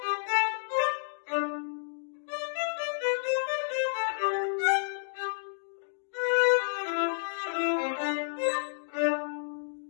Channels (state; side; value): silent; right; digital silence